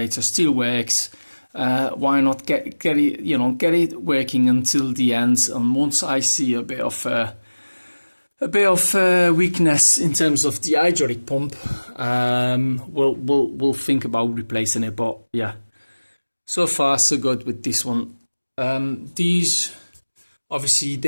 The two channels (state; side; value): inverted; both; correlation -1.00